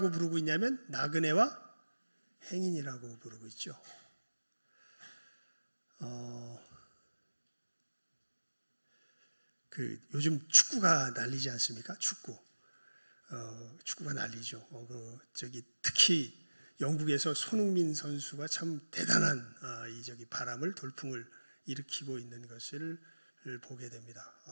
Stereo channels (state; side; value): inverted; both; correlation -1.00